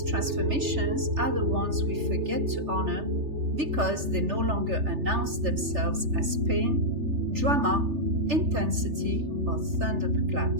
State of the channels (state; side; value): late; left; 3.3 ms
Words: transformations are the ones we forget to honor because they no longer announce themselves as pain, drama, intensity, or